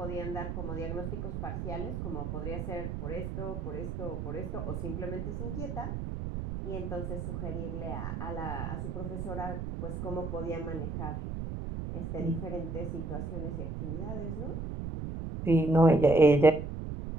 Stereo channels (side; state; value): right; noise; rumble, 4 dB below the sound